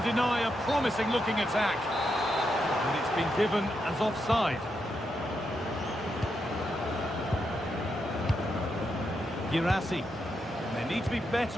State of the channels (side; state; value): both; normal; correlation 0.83